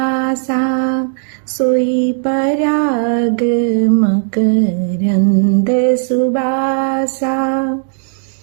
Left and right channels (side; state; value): left; silent; digital silence